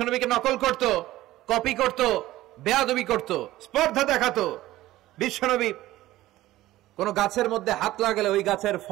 নকল করত, কপি করত, বেয়াদবি করত, স্পর্ধা দেখাতো। বিশ্বনবী কোন গাছের মধ্যে হাত লাগালে ওই গাছের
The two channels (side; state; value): left; quieter; 16.0 dB